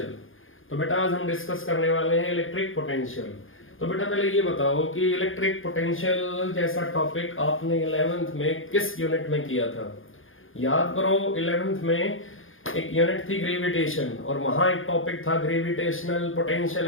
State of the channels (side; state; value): right; late; 0.59 ms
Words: तो बेटा आज हम डिस्कस करने वाले हैं इलेक्ट्रिक पोटेंशियल। तो बेटा पहले ये बताओ कि इलेक्ट्रिक पोटेंशियल जैसा टॉपिक आपने 11th में किस यूनिट में किया था। याद करो 11th में एक यूनिट थी ग्रेविटेशन और वहां एक टॉपिक था gravitational potential